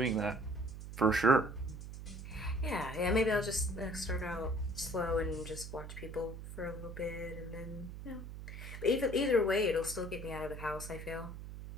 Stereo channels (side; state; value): right; noise; hum, 10 dB below the sound